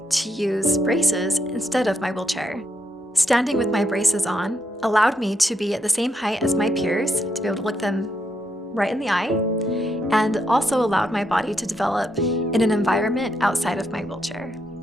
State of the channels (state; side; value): normal; both; correlation 0.78